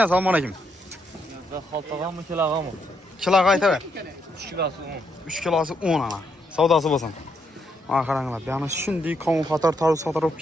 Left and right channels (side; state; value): both; normal; correlation 0.77